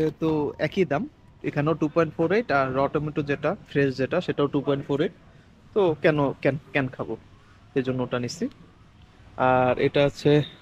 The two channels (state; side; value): identical; both; correlation 1.00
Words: একই দাম, এখানেও 2.48, আর টমেটো যেটা ফ্রেশ যেটা সেটাও 2.48। তো কেন ক্যান ক্যান খাবো, এই জন্য ওটা নিচ্ছি। আর এটা হচ্ছে